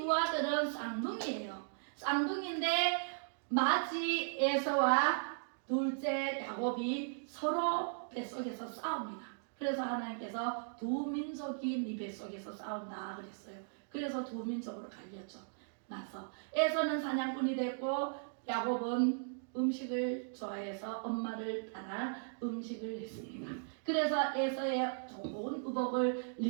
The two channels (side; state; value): left; silent; digital silence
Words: 아들은 쌍둥이에요. 쌍둥이인데 맏이 에서와 둘째 야곱이 서로 뱃속에서 싸웁니다. 그래서 하나님께서 두 민족이 네 뱃속에서 싸운다 그랬어요. 그래서 두 민족으로 갈렸죠. 나서 에서는 사냥꾼이 됐고 야곱은 음식을 좋아해서 엄마를 따라 음식을 했습니다. 그래서 에서의 좋은 의복을